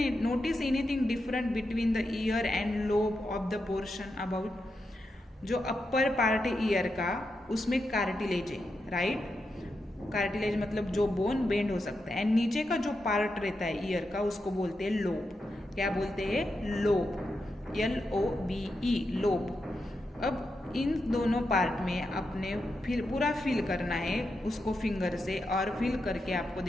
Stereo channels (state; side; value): normal; both; correlation 0.86